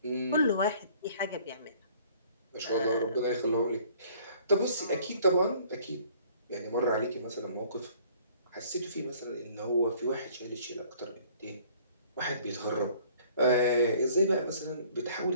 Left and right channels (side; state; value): both; inverted; correlation -0.56